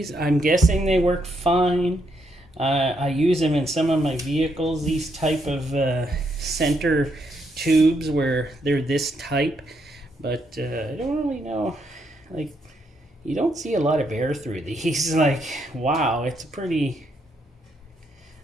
I'm guessing they work fine. I use them in some of my vehicles, these type of center tubes where they're this type. But I don't really know, like, you don't see a lot of air through these. Like, wow, it's pretty,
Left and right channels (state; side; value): normal; both; correlation 0.76